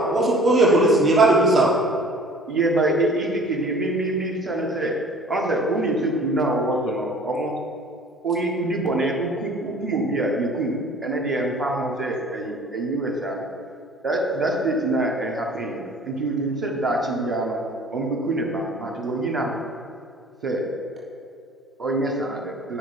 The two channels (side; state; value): both; normal; correlation 0.48